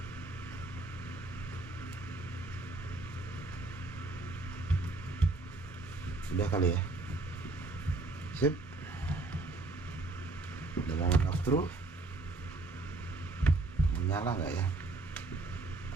sudah kali ya. Sip, udah mau off through, menyala nggak ya?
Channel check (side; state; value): left; quieter; 3.2 dB